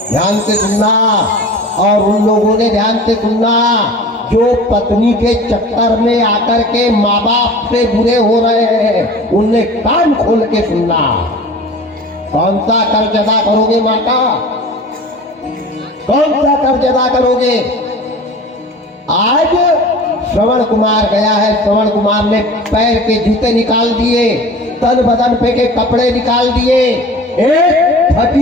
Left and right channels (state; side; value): normal; both; correlation 0.40